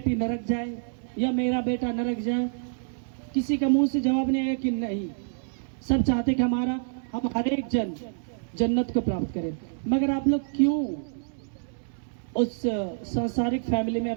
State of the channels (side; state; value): left; silent; digital silence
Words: नरक जाए या मेरा बेटा नरक जाए? किसी का मुंह से जवाब नहीं आएगा कि नहीं। सब चाहते कि हम हर एक जन जन्नत को प्राप्त करें। मगर आप लोग क्यों उस सांसारिक फैमिली में